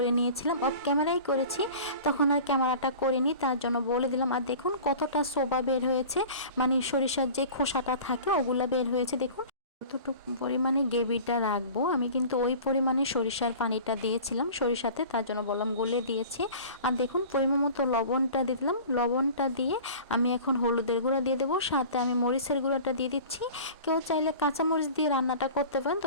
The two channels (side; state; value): both; inverted; correlation -0.40